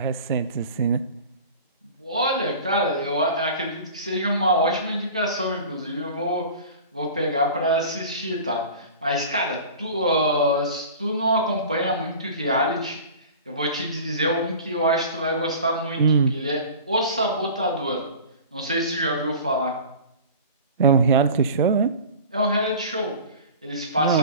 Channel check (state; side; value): inverted; both; correlation -0.39